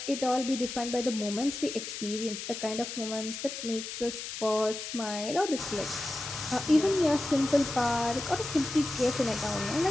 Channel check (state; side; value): noise; left; hiss, 7 dB below the sound